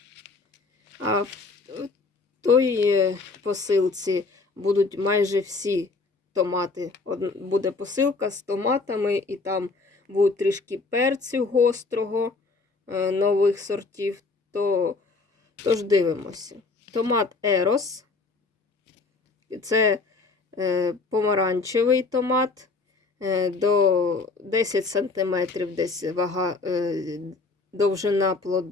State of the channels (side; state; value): right; quieter; 3.9 dB